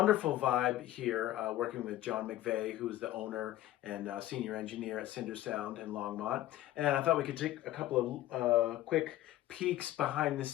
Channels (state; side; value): quieter; right; 14.6 dB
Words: vibe here, working with John McVeigh, who's the owner and senior engineer at Cinder Sound in Longmont. And I thought we could take a couple of quick peeks behind the